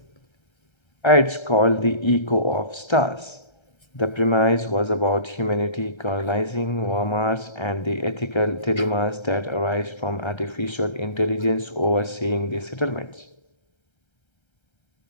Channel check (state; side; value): late; right; 1.3 ms